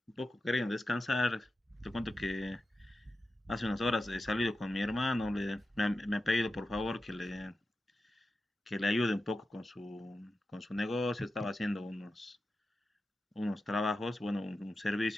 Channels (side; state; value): both; normal; correlation 0.92